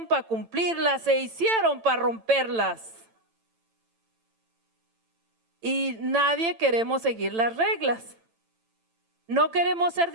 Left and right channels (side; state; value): left; late; 9.0 ms